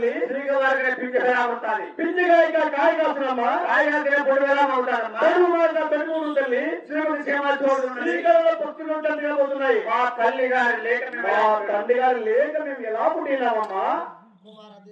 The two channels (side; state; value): both; identical; correlation 1.00